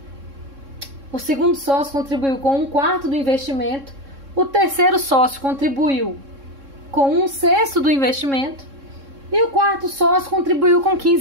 O segundo sócio contribuiu com 1/4 do investimento. O terceiro sócio contribuiu com 1/6 do investimento. E o quarto sócio contribuiu com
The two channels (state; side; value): late; left; 3.6 ms